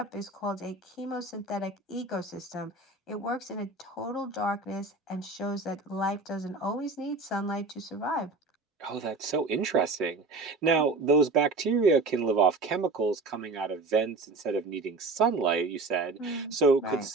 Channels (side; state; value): left; quieter; 3.4 dB